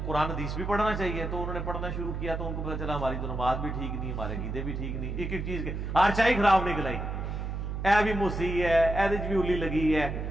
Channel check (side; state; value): right; noise; hum, 4 dB below the sound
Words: قرآن حدیث بھی پڑھنا چاہیے, تو انہوں نے پڑھنا شروع کیا. تو ان کو پتا چلا ہماری تو نماز بھی ٹھیک نہیں, ہمارے عقیدے بھی ٹھیک نہیں, ایک ایک چیز کے ہر چائی خراب نکل آئی. اے بھی موسی ہے, اے بھی اولی لگی ہے,